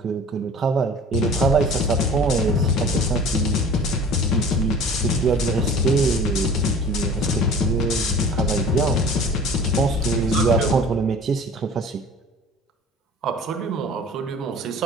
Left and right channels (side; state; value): both; normal; correlation 0.44